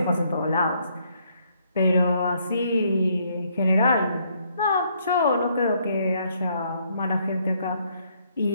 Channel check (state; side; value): inverted; both; correlation -0.70